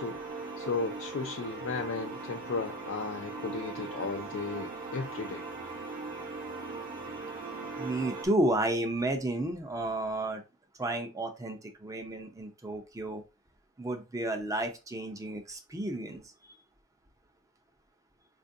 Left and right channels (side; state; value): both; normal; correlation 0.40